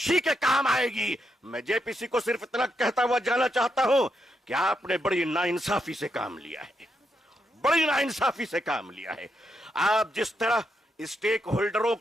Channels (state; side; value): normal; both; correlation 0.82